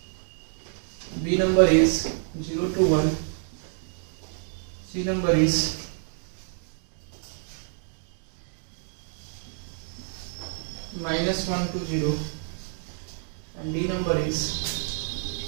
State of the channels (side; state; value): left; silent; digital silence